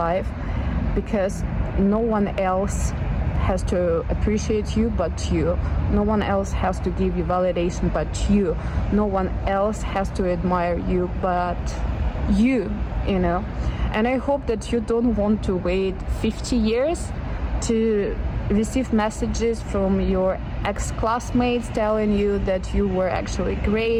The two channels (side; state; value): both; identical; correlation 1.00